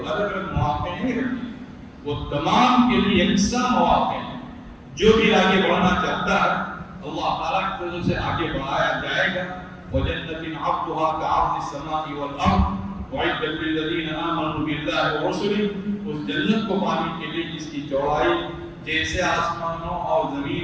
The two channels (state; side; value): identical; both; correlation 1.00